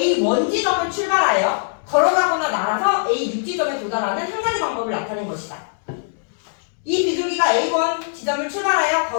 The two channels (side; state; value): right; silent; digital silence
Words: 지점을 출발하여 걸어가거나 날아서 A6 지점에 도달하는 한 가지 방법을 나타낸 것이다. 이 비둘기가 A1 지점을 출발하여